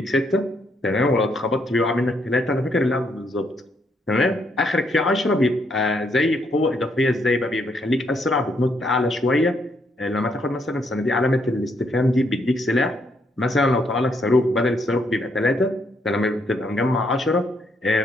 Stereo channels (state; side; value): normal; both; correlation 0.74